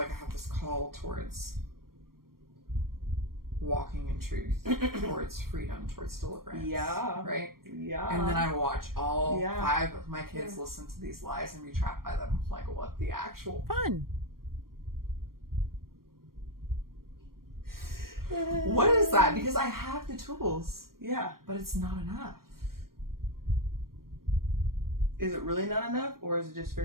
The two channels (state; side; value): late; left; 0.93 ms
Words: I have this call towards walking in truth, towards freedom, towards deliverance. Yeah. Right? Yeah. And then I watch all 5 of my kids listen to these lies and be trapped by them. Like, what the actual... Fun. What is that? Because I have the tools. Yeah. But it's not enough. Is it really not enough? Or is it just